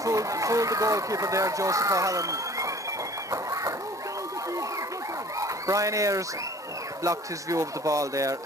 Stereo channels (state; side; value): normal; both; correlation 0.49